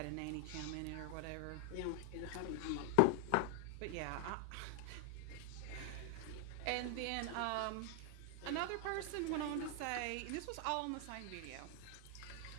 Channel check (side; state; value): both; different; correlation 0.00